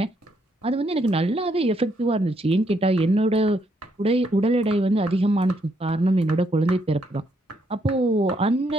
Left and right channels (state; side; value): normal; both; correlation 0.74